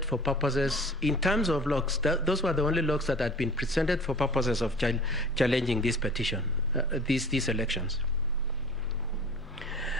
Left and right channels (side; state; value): both; normal; correlation 0.44